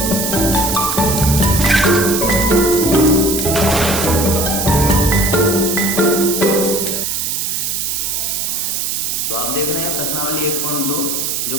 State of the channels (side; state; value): right; noise; hiss, 1 dB below the sound